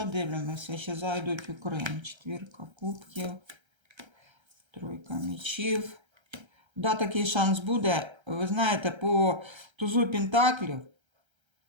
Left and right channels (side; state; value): left; late; 1.3 ms